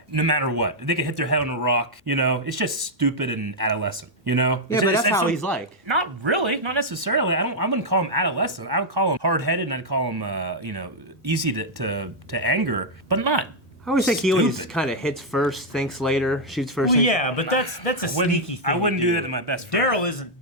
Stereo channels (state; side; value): normal; both; correlation -0.03